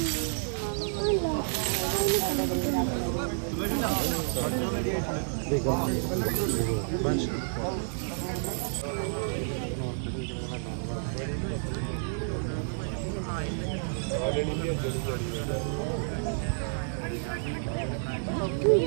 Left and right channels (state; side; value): silent; left; digital silence